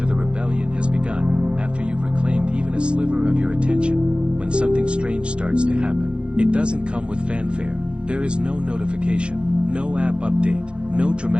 the rebellion has begun, after you've reclaimed even a sliver of your attention, when something strange starts to happen. It doesn't come with fanfare. There is no notification, no app update, no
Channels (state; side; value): late; left; 0.056 ms